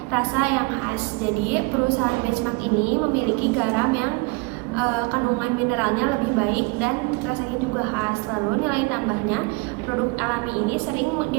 rasa yang khas. Jadi perusahaan benchmark ini memiliki garam yang kandungan mineralnya lebih baik dan rasanya juga khas. Lalu nilai tambahnya, produk alami ini sering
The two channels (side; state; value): left; quieter; 27.2 dB